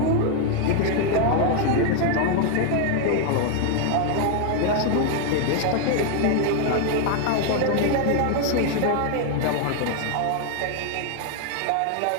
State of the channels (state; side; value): different; both; correlation 0.00